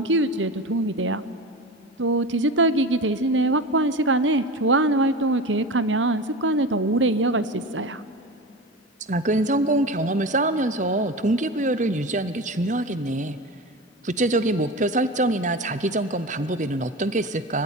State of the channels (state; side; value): normal; both; correlation 0.28